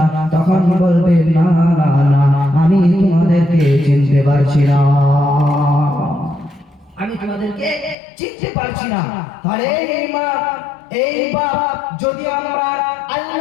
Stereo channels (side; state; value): right; drops out; at 8.0 s